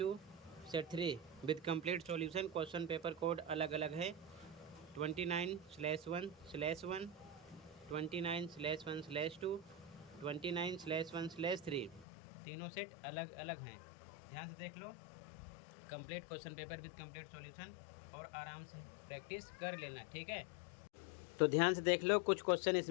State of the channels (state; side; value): drops out; right; at 12.1 s